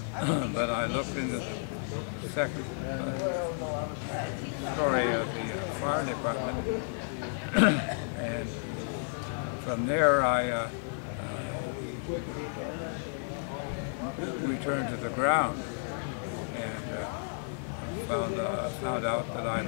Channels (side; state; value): right; silent; digital silence